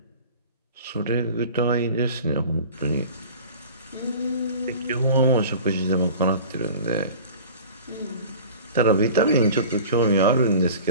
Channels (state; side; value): inverted; both; correlation -0.41